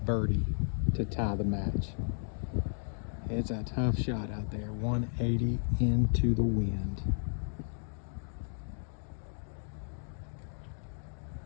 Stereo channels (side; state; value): right; silent; 55 dB below the other